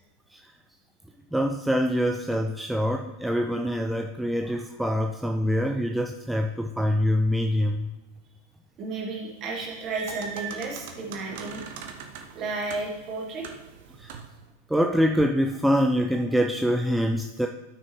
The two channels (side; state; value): both; normal; correlation 0.83